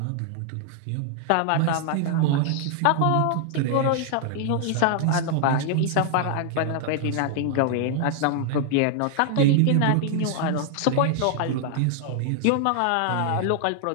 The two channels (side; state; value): both; different; correlation 0.00